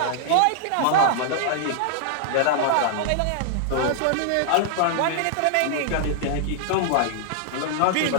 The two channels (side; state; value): both; different; correlation -0.01